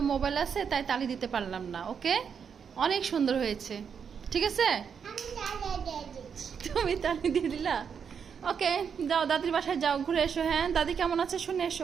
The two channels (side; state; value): left; quieter; 6.9 dB